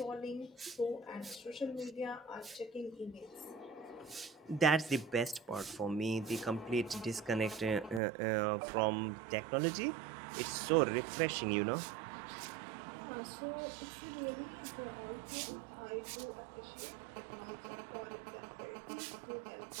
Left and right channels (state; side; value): drops out; left; at 8.0 s